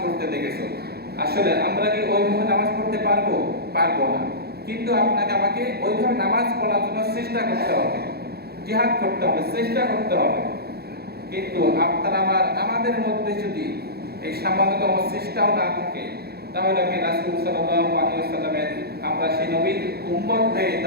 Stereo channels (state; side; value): late; left; 0.46 ms